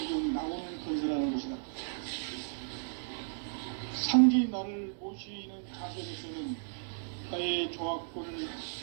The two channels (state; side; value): silent; left; digital silence